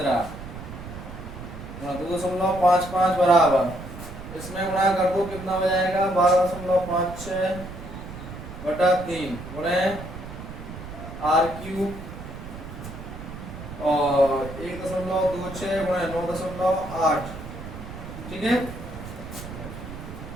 गुणा 2.55 बराबर, इसमें गुणा कर दो कितना हो जाएगा 12.56 बटा 3 गुणे आर क्यूब और 1.26 गुणे 9.8, ठीक है।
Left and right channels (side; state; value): right; noise; rumble, 11 dB below the sound